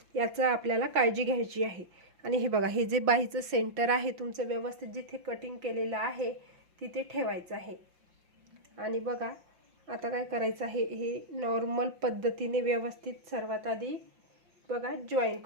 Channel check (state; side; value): late; left; 5.7 ms